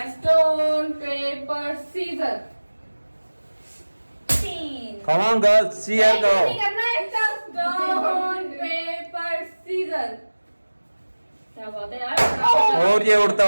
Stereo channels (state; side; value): inverted; both; correlation -1.00